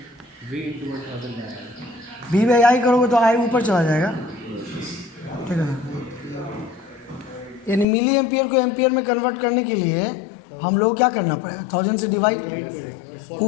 V बाई आई करोगे तो आई ऊपर चला जाएगा, ठीक है ना। यानी मिली एम्पियर को एम्पियर में कन्वर्ट करने के लिए हम लोग क्या करना पड़ेगा, 1000 से डिवाइड। वो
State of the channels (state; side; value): drops out; right; at 7.9 s